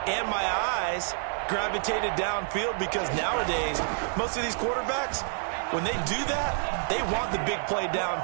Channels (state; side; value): silent; left; 59 dB below the other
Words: and my eyes gravitated downfield, because nowadays, most of these quarterbacks, when they do that, they want the big play